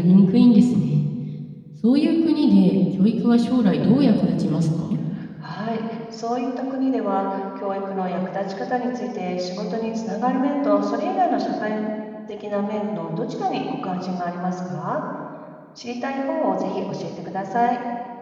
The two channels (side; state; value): both; identical; correlation 1.00